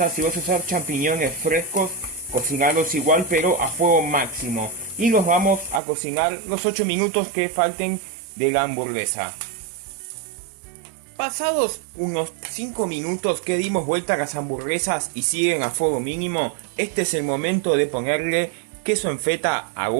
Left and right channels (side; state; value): left; drops out; at 5.8 s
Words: Si vas a usar champiñones frescos, cocinarlos igual pero a fuego máximo. Y los vamos a cocinar los 8 minutos que falten de la hamburguesa. Pasados unos 5 minutos que dimos vuelta a las hamburguesas y siguen a fuego mínimo, este es el momento de ponerle queso en feta a